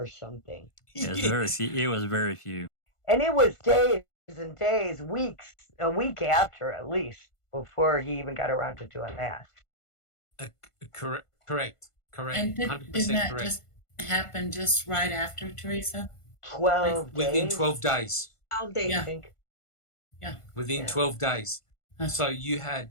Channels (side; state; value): right; late; 1.5 ms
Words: something. It was very few. It was very few. And it was days and days, weeks, a week after at least, before he even got around to doing that. Correct. And didn't that just happen just right after, Teresa? 12 Within 12 days. 12 days, Yeah. I think. Yeah. Within 12 days. So you